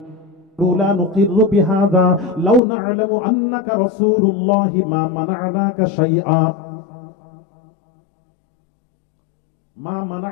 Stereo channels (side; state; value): right; drops out; at 2.6 s